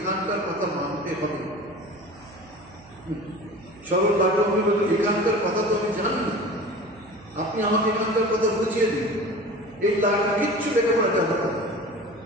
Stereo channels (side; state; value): right; noise; hum, 23 dB below the sound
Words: কথা মানতে হবে। সরল লাঠু বলল এখানকার কথা তো আমি জানি না, আপনি আমাকে এখানকার কথা বুঝিয়ে দিন। এই লাঠু কিচ্ছু লেখাপড়া জানা না,